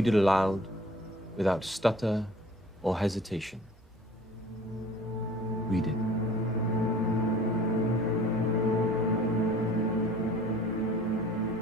it aloud without stutter or hesitation. Read it.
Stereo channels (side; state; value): both; normal; correlation 0.48